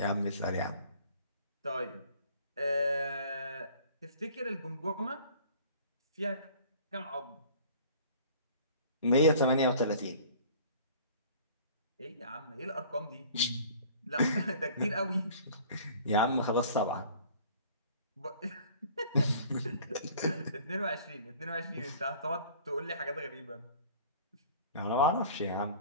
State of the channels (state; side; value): inverted; both; correlation -0.49